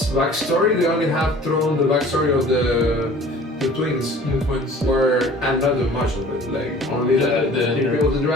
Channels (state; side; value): normal; both; correlation 0.47